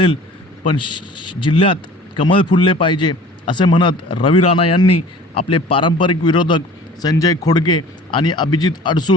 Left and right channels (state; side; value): normal; both; correlation 0.46